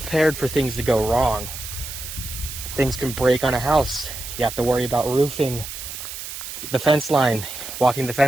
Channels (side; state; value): right; noise; hiss, 9 dB below the sound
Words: for things to go wrong. Things can break on a house. You have to worry about roofing. The fence line, walking the